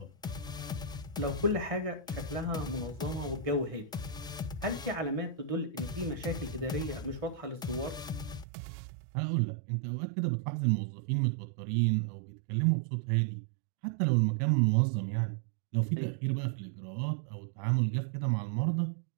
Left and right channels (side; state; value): left; drops out; at 8.5 s